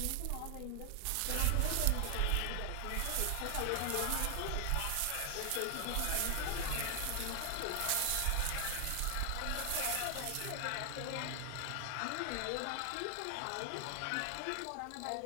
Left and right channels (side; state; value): both; different; correlation 0.00